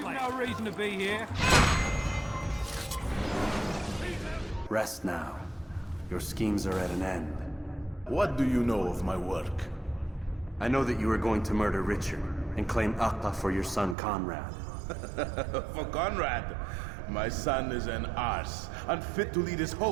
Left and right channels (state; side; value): drops out; left; at 14.0 s